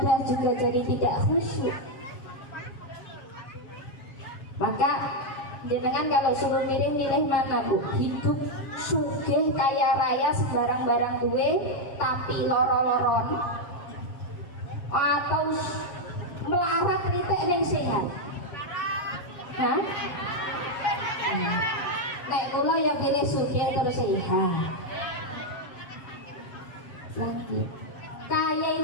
juga jadi tidak khusyuk. Maka jenengan kalau suruh milih mana Bu? Hidup suka sugih kaya raya sembarang barang duwe tapi loro-loron atau melarat ritek ning sehat? Hah? Nek kula ya pilih sugih terus sehat. Lanjut. Kaya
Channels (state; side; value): late; right; 7.4 ms